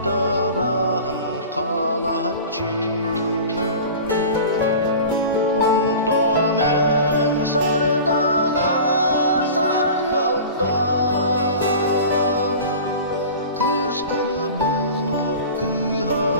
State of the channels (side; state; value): both; inverted; correlation -0.37